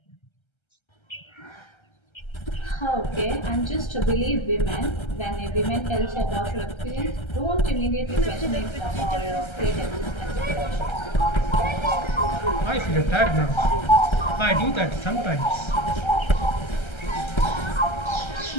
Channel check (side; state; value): right; late; 1.3 ms